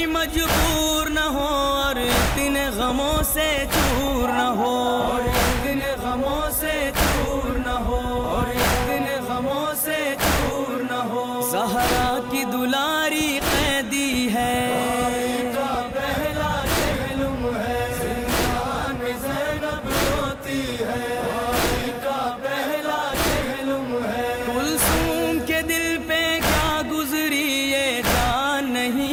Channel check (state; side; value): identical; both; correlation 1.00